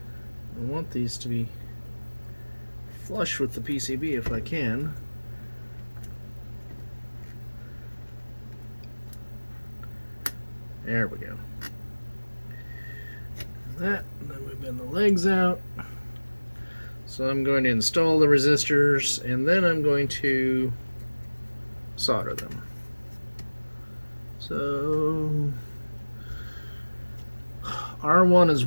I want these to be flush with the PCB if I can. There we go. That, and then we bend the legs out. So I'm going to install the resistors and then I'm going to solder them. So R1 is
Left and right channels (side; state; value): both; inverted; correlation -1.00